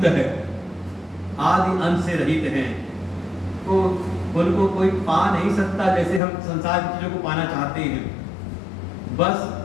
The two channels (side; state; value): right; drops out; at 6.2 s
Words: है, आदि अंत से रहित हैं। तो उनको कोई पा नहीं सकता, जैसे हम संसार की चीजों को पाना चाहते हैं। बस